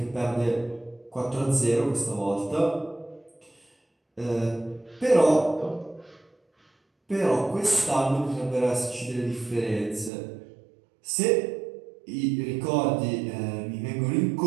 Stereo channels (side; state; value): left; drops out; at 10.1 s